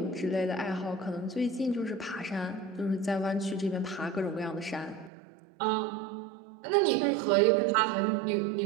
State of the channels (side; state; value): left; drops out; at 5.1 s